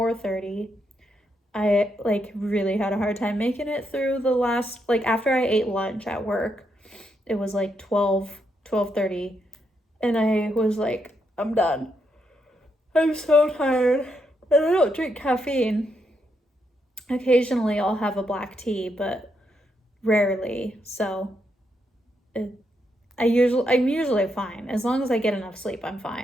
I like really had a hard time making it through the last, like after I ate lunch at work, it was like 12:30, and I was like, I'm done. I'm so tired. And I don't drink caffeine. Occasionally I'll have a black tea, but rarely. So I'm usually fine. As long as I get enough sleep, I'm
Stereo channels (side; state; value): both; normal; correlation 0.79